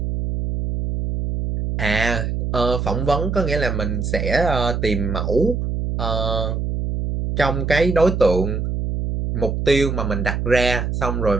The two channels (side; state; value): right; noise; hum, 2 dB below the sound